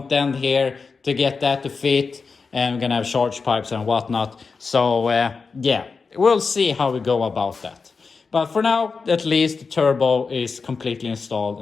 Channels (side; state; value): right; quieter; 4.8 dB